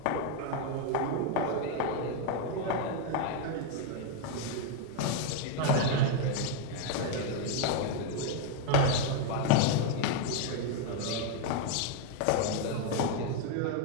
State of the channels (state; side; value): different; both; correlation 0.01